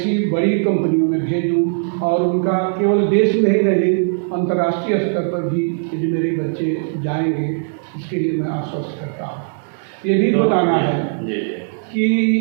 बड़ी कंपनियों में भेजूं और उनका केवल देश में ही नहीं अंतर्राष्ट्रीय स्तर पर भी यदि मेरे बच्चे जाएंगे, इसके लिए मैं आश्वस्त करता हूँ। ये भी बताना है कि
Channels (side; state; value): left; silent; digital silence